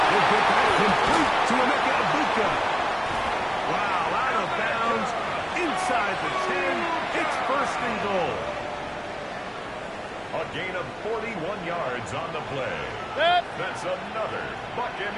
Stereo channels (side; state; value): both; identical; correlation 1.00